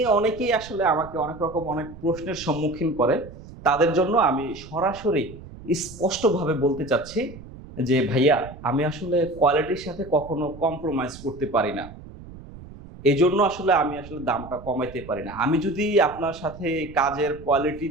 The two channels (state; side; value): noise; right; rumble, 16 dB below the sound